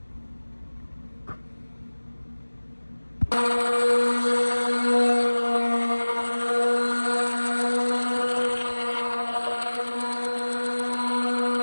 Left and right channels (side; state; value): both; inverted; correlation -1.00